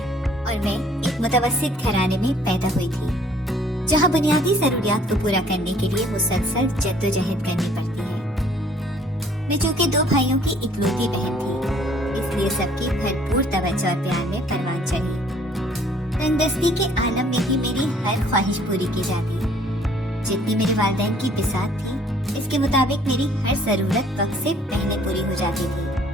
اور میں ایک متوسط گھرانے میں پیدا ہوئی تھی جہاں بنیادی ضروریات کو پورا کرنے کے لیے مسلسل جدوجہد کرنی پڑتی ہے۔ میں چونکہ 2 بھائیوں کی اکلوتی بہن تھی، اس لیے سب کی بھرپور توجہ اور پیار میں پروان چڑھی۔ تندرستی کے عالم میں ہی میری ہر خواہش پوری کی جاتی، جتنی میرے والدین کی بساط تھی اس کے مطابق میری ہر ضرورت وقت سے پہلے پوری ہو جاتی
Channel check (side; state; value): both; normal; correlation 0.58